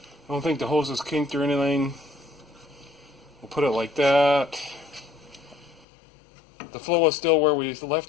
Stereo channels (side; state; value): right; drops out; at 5.9 s